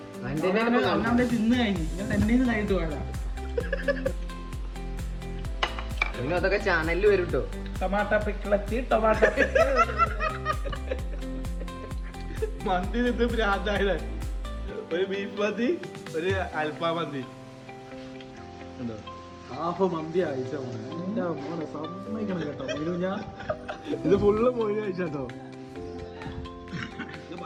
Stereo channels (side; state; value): both; identical; correlation 1.00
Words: തിന്ന് കഴിഞ്ഞു ഞാൻ തന്നെ കഴിഞ്ഞിട്ട് പോയതാ. അതൊക്കെ ചാനലിൽ വരും കേട്ടോ. ടൊമാറ്റോ പിക്കിളെത്തി ടൊമാറ്റോ മന്തി നിന്ന് ഭ്രാന്തായത്. ഒരു ബീഫ് മന്തി ഒരു അൽഫാം മന്തി ഹാഫ് മന്തി അയച്ച മോനെ സമ്മതിക്കണം കേട്ടോ. ഞാൻ ഇത് ഫുള്ള് മോയിന് കഴിച്ചോ.